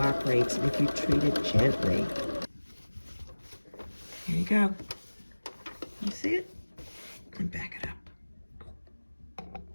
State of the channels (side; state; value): both; inverted; correlation -1.00